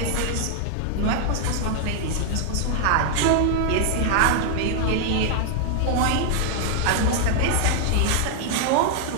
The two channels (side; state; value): both; different; correlation 0.00